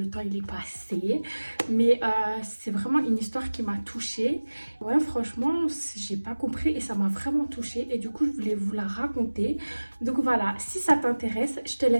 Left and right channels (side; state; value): both; inverted; correlation -1.00